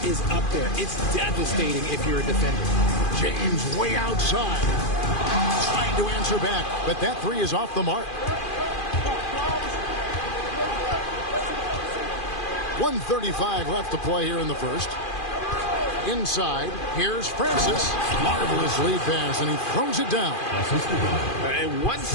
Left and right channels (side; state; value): right; late; 2.4 ms